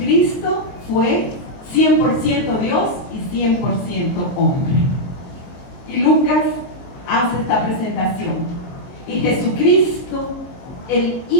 fue 100% Dios y 100% hombre. Y Lucas hace esta presentación. Y Jesucristo, el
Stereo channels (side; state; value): right; late; 22 ms